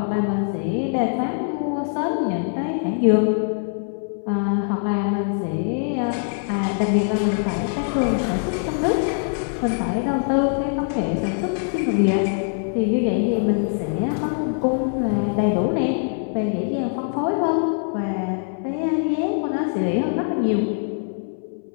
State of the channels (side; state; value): right; silent; 64 dB below the other